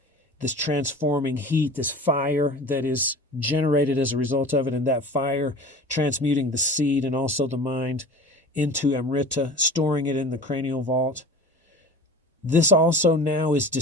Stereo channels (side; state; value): both; normal; correlation 0.39